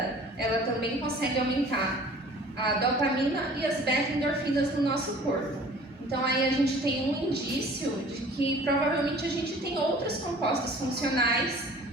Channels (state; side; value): normal; both; correlation 0.48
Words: ela também consegue aumentar a dopamina e as beta-endorfinas no nosso corpo. Então aí a gente tem um indício de que provavelmente a gente tem outros compostos funcionais